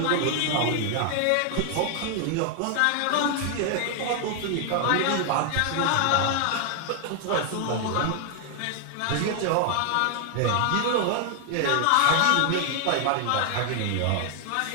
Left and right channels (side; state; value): both; different; correlation 0.00